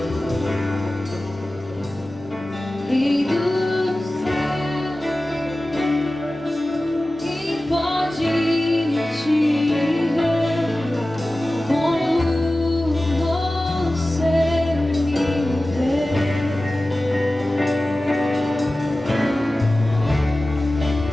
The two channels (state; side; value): normal; both; correlation 0.96